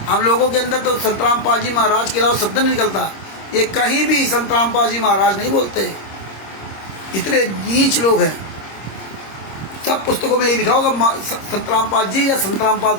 हम लोगों के अंदर तो संत रामपाल जी महाराज के अलावा शब्द नहीं निकलता। ये कहीं भी संत रामपाल जी महाराज नहीं बोलते। इतने नीच लोग हैं। सब पुस्तकों में ये लिखा होगा संत रामपाल जी या संत रामपाल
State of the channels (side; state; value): right; late; 26 ms